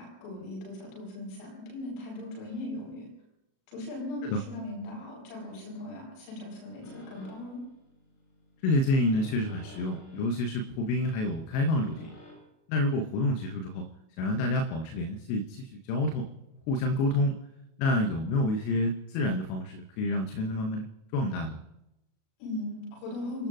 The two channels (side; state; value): right; late; 37 ms